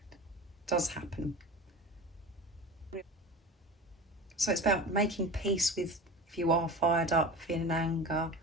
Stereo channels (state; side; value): normal; both; correlation 0.33